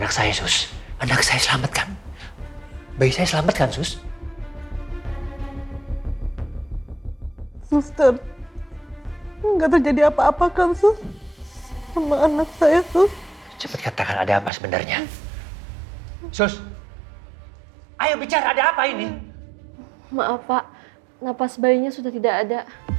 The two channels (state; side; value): drops out; left; at 14.5 s